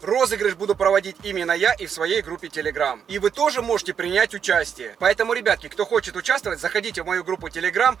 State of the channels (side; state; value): left; quieter; 7.5 dB